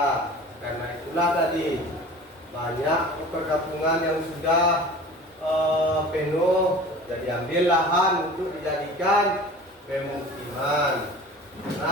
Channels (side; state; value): both; normal; correlation 0.41